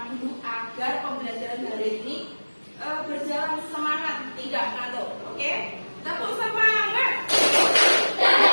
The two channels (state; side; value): inverted; both; correlation -1.00